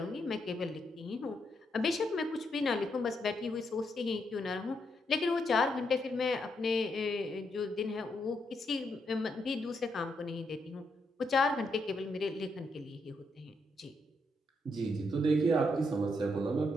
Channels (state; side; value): normal; both; correlation 0.79